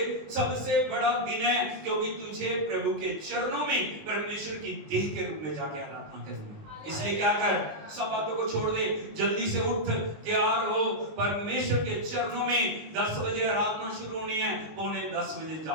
सबसे बड़ा दिन है, क्योंकि तुझे प्रभु के चरणों में परमेश्वर की देह के रूप में जाके आराधना करनी है। इसलिए क्या कर, सब बातों को छोड़ दे, जल्दी से उठ, तैयार हो, परमेश्वर के चरणों में 10 बजे आराधना शुरू होनी है, 9:45 बजे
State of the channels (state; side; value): late; left; 19 ms